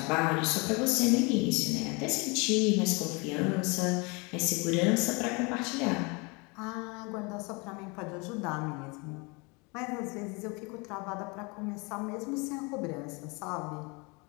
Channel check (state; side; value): quieter; right; 29.0 dB